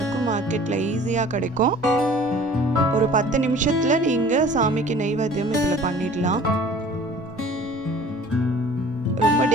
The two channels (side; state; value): both; normal; correlation 0.48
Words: மார்க்கெட்டில் ஈஸியாக கிடைக்கும். ஒரு 10 நிமிஷத்தில் நீங்கள் சாமிக்கு நெய்வேத்தியம் இதில் பண்ணிடலாம். ரொம்ப